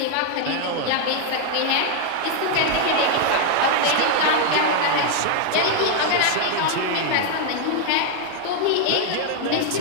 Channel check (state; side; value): different; both; correlation 0.00